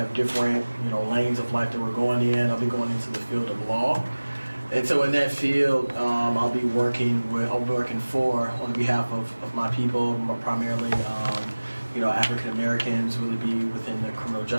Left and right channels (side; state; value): both; inverted; correlation -1.00